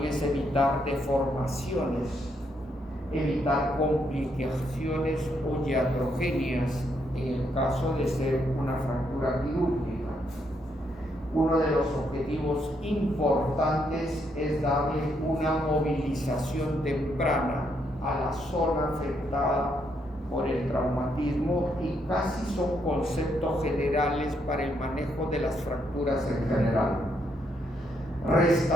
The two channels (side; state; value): both; normal; correlation 0.76